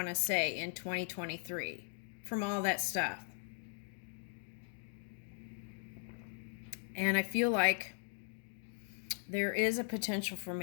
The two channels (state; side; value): silent; right; 52 dB below the other